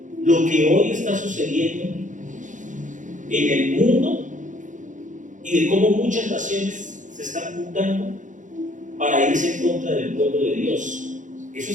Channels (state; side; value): late; left; 0.37 ms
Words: lo que hoy está sucediendo en el mundo y de cómo muchas naciones se están juntando para irse en contra del pueblo de Dios. Eso